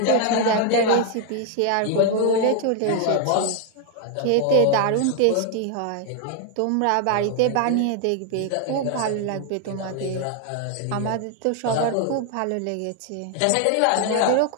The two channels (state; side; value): different; both; correlation 0.00